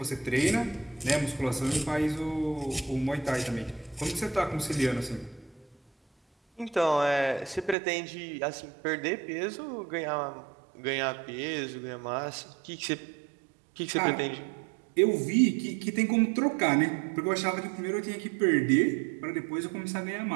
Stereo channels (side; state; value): left; drops out; at 7.8 s